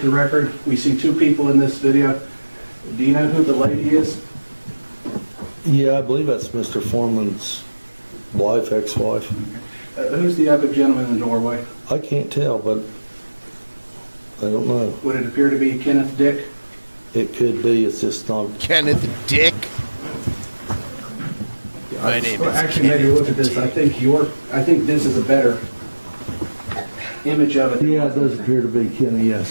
the record, we see two people in this video. Do you know who the lady is? Yeah, I believe that's Mr. Foreman's wife, ex-wife. Who's the other gentleman in the doorway? I can't tell, but I don't know. Would it appear to be Kenneth Dick? It could be. It's just not. Kenneth Dick. My name is Actually, maybe look at this. I think this is a better image of it. Yeah, it does appear to be Kenny,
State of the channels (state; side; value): inverted; both; correlation -1.00